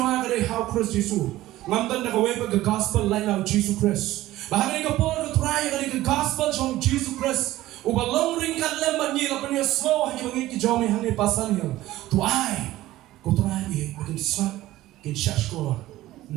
ka how Christ Jesus ngamtan na kaway pag gospel line of Jesus Christ. Bahagi ka po ka try ka gospel from Jesus Christ. Ubalong ring kan lemban ni lapan niya slow hagi mangit ki jome hangi pasan niya. Tuay ko try ni makin swat kin shashkor.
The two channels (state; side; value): quieter; left; 15.9 dB